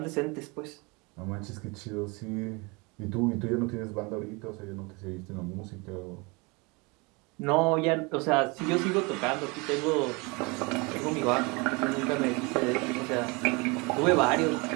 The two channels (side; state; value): left; quieter; 27.7 dB